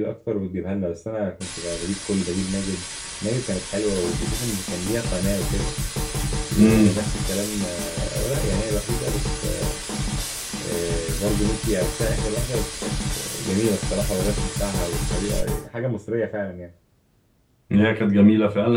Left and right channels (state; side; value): identical; both; correlation 1.00